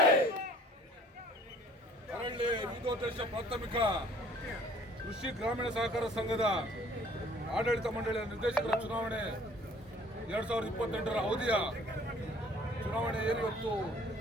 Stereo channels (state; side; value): normal; both; correlation 0.55